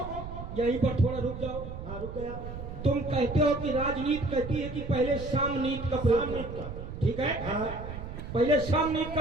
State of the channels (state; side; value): noise; right; rumble, 9 dB below the sound